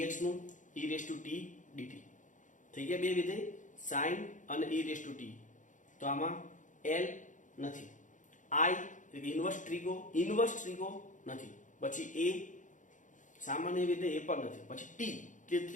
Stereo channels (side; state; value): right; late; 0.37 ms